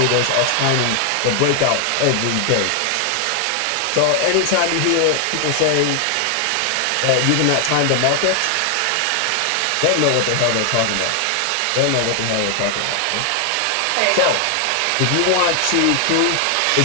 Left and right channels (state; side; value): different; both; correlation 0.00